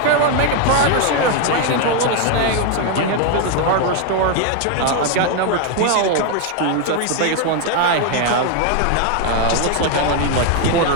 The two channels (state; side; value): different; both; correlation 0.01